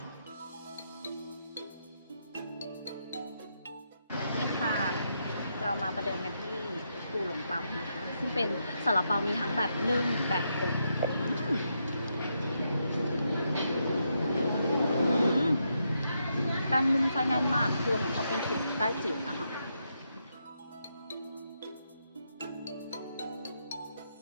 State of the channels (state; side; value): inverted; both; correlation -0.81